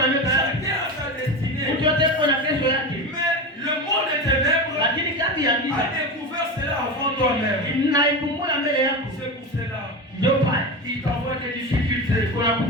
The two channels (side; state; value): both; normal; correlation 0.22